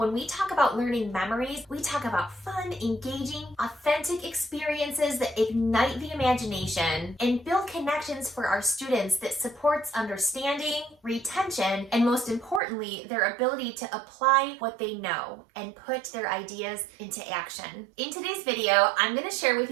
we talk about learning memories, we talk about fun, engaging, authentic experiences that ignite the imagination and build connections for our students that supports understanding, retention, and most importantly, their ability to apply what they know and put their ideas into action. In today's video, I'm going to share with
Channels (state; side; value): drops out; left; at 12.6 s